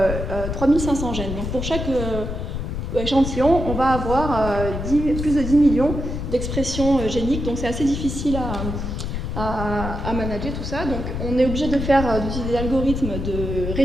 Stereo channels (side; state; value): left; noise; rumble, 4 dB below the sound